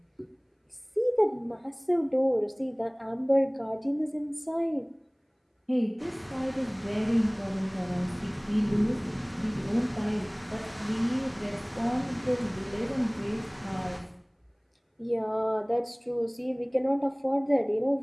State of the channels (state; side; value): identical; both; correlation 1.00